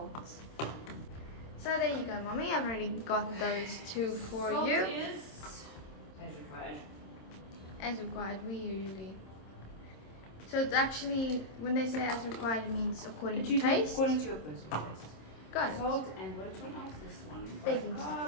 So there you go, mommy. I've already got those 2 for Salt you. is as required. As required, we usually. So it's actually, when they say as required, it means according to taste. According to your personal taste. Got it. Salt and which one else? This one. Baking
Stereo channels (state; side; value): late; right; 27 ms